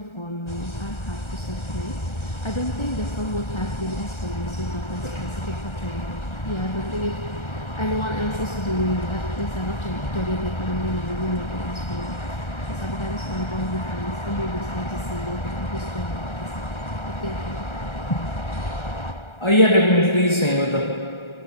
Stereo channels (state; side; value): late; right; 1.3 ms